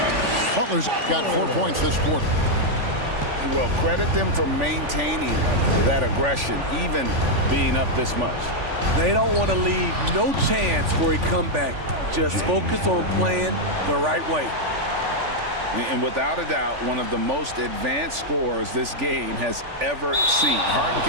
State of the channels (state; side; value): late; left; 3.5 ms